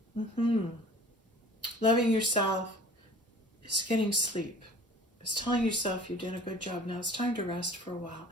Loving yourself is getting sleep. It's telling yourself you did a good job. Now it's time to rest for a while.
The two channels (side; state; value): both; normal; correlation 0.46